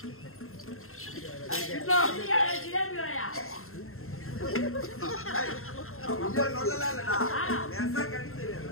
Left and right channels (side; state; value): right; late; 0.62 ms